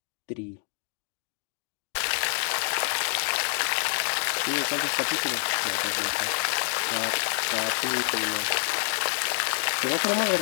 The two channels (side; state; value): right; silent; digital silence